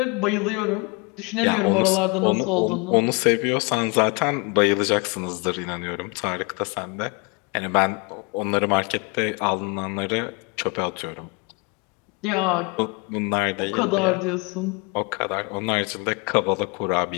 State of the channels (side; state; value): right; quieter; 29.9 dB